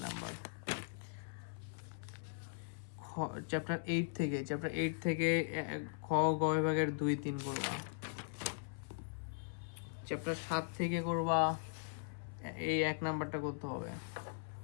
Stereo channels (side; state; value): right; silent; 51 dB below the other